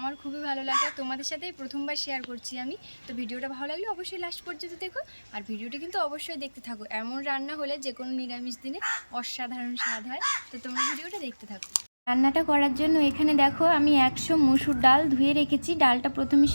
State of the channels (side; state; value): both; inverted; correlation -1.00